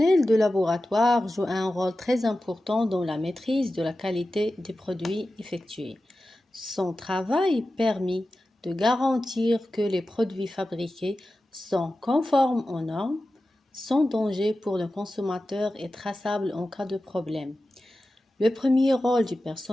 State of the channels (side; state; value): both; normal; correlation 0.94